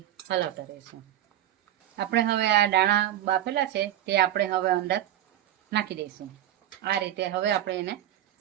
હલાવતા રહીશું. આપણે હવે આ દાણા બાફેલા છે તે આપણે હવે અંદર નાખી દઈશું. આ રીતે હવે આપણે એને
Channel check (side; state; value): left; quieter; 12.2 dB